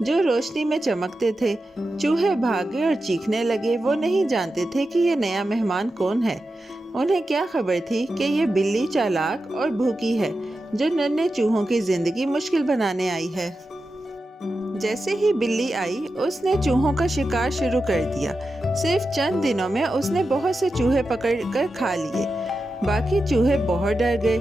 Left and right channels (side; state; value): both; normal; correlation 0.91